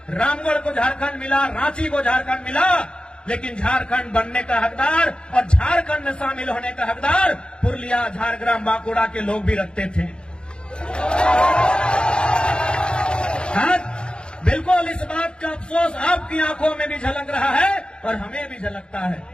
रामगढ़ को झारखंड मिला, रांची को झारखंड मिला, लेकिन झारखंड बनने का हकदार और झारखंड में शामिल होने का हकदार पुरुलिया, झारग्राम, बांकुड़ा के लोग भी रखते थे। आज बिल्कुल इस बात का अफसोस आपकी आंखों में भी झलक रहा है और हमें भी झलकता है।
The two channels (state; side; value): late; right; 0.052 ms